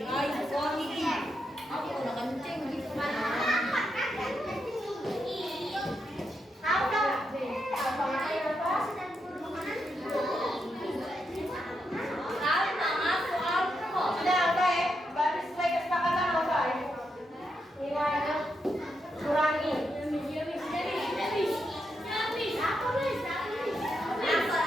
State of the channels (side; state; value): both; normal; correlation 0.83